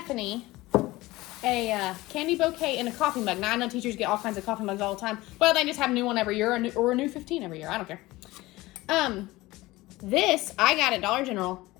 a candy bouquet in a coffee mug. Now I know teachers get all kinds of coffee mugs all the time. Well, they just have a new one every year or a new 15 every year. I don't care. This I got at Dollar General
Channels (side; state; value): right; quieter; 19.3 dB